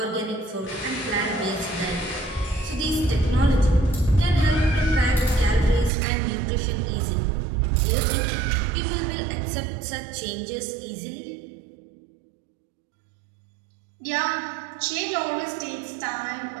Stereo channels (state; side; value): drops out; left; at 5.9 s